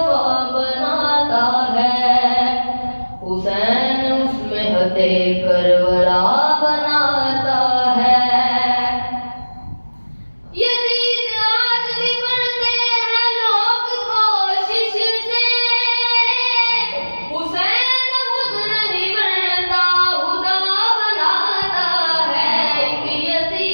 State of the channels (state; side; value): inverted; both; correlation -1.00